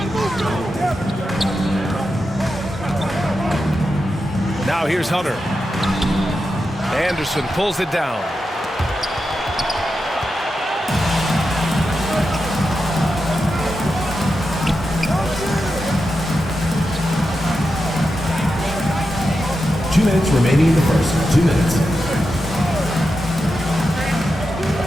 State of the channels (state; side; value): normal; both; correlation 0.89